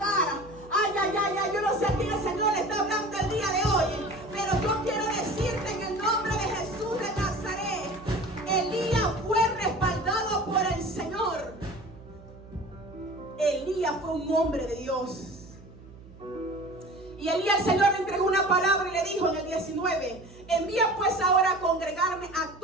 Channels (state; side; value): noise; right; hum, 20 dB below the sound